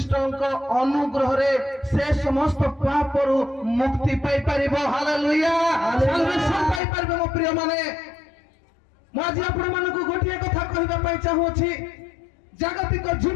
ଅନୁଗ୍ରହରେ ସେ ସମସ୍ତ ପାପରୁ ମୁକ୍ତି ପାଇପାରିବ। ହାଲେଲୁୟା। ସାଲ୍ଭେସନ୍ ପାଇପାରିବ। ମୋ ପ୍ରିୟ ମାନେ, ମୁଁ ଆଜି ଆପଣମାନଙ୍କୁ ଗୋଟିଏ କଥା କହିବା ପାଇଁ ଚାହୁଁଅଛି। ଜାଗତିକ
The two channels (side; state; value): right; drops out; at 6.8 s